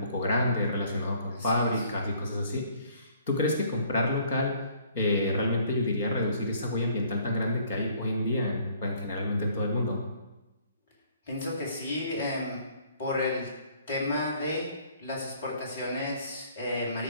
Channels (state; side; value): inverted; both; correlation -0.60